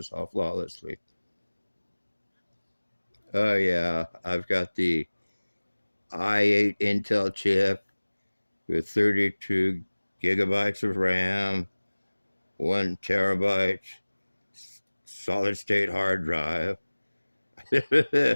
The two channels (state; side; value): inverted; both; correlation -1.00